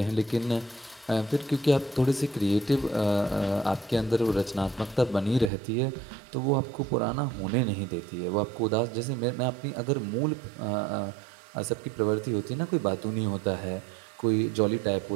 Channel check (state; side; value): drops out; left; at 5.5 s